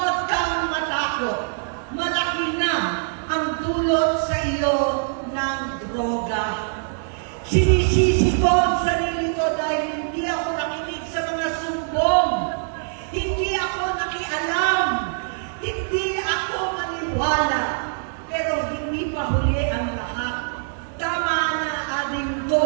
kang matakot. Malaki na ang dulot sa iyo ng droga. Sinisisi ko ang sarili ko dahil hindi ako nakinig sa mga sumbong. Hindi ako nakialam. Hindi ako maniwala. Pero hindi pa huli ang lahat. Tama na, ading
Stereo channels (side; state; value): left; silent; 63 dB below the other